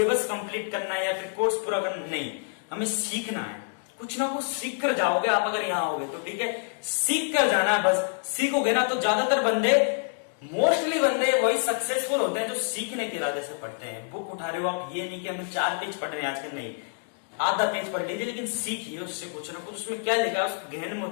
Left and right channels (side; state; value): right; silent; digital silence